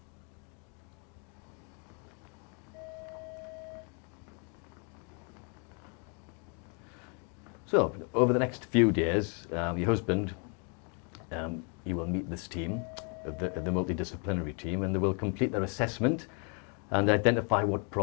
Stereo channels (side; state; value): right; quieter; 37.7 dB